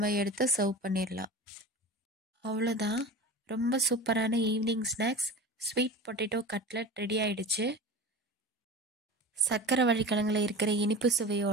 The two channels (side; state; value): both; normal; correlation 0.33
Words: எடுத்து சர்வ் பண்ணிடலாம். அவ்வளோதான். ரொம்ப சூப்பரான evening snacks sweet potato cutlet ready ஆயிடுச்சு. சக்கரவள்ளி கிழங்குல இருக்கிற இனிப்பு